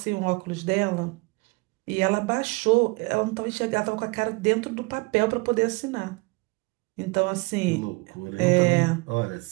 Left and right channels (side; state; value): left; quieter; 26.3 dB